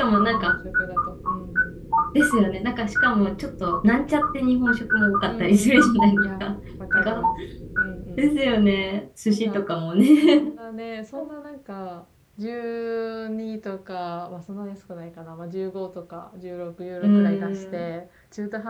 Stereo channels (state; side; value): identical; both; correlation 1.00